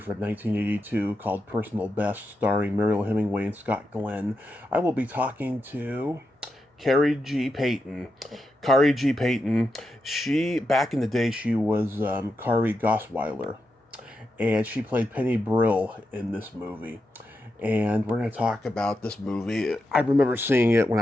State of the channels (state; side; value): normal; both; correlation 0.87